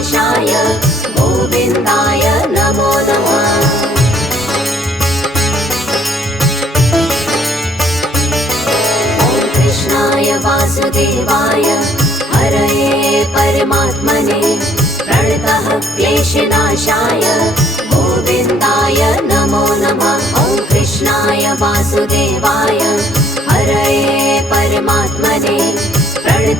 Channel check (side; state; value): both; normal; correlation 0.63